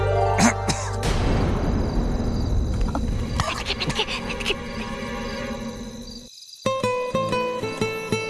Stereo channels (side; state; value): both; identical; correlation 1.00